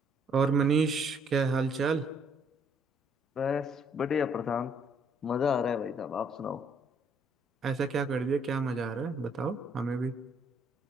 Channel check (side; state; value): both; normal; correlation 0.66